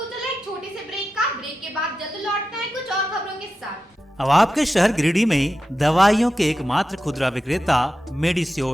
चला एक छोटे से ब्रेक का। ब्रेक के बाद जल्द लौटते हैं कुछ और खबरों के साथ। अब आपके शहर गिरिडीह में दवाइयों के एकमात्र खुदरा विक्रेता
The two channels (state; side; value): normal; both; correlation 0.91